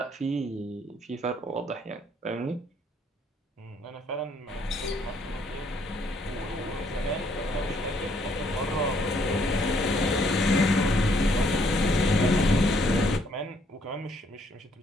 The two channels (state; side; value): normal; both; correlation 0.68